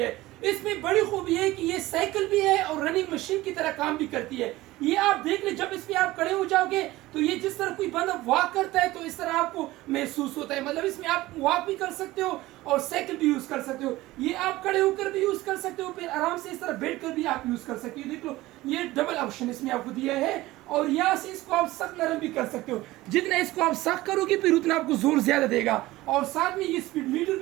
इसमें बड़ी खूबी है कि ये साइकिल भी है और रनिंग मशीन की तरह काम भी करती है। ये आप देख ले, जब इसमें आप खड़े हो जाओगे तो ये जिस तरह कोई बंदा वॉक करता है तो इस तरह आपको महसूस होता है। मतलब इसमें आप वॉक भी कर सकते हो और साइकिल भी यूज कर सकते हो। ये आप खड़े होकर भी यूज कर सकते हो, फिर आराम से इस तरह बैठ कर भी आप यूज कर सकते हो। देख लो, ये डबल ऑप्शन इसमें आपको दिया है और यहाँ से इसको आप सख्त नरम भी कर सकते हो। जितना इसको आप सख्त करोगे फिर उतना आपको जोर ज्यादा देगा। और साथ में ये स्पीड मीटर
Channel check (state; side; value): quieter; left; 18.0 dB